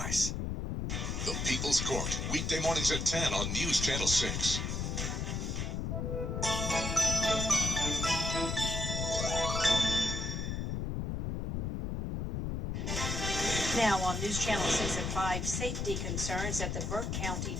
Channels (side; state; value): left; noise; rumble, 2 dB below the sound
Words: The People's Court, weekday mornings at 10 on News Channel 6. Now on News Channel 6 at 5, safety concerns at the Burke County